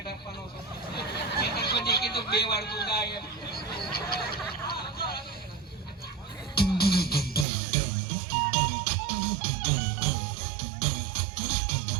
આપવાનો છે. પછી કીધું 2 વાર તું ગાય.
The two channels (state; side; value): drops out; left; at 7.5 s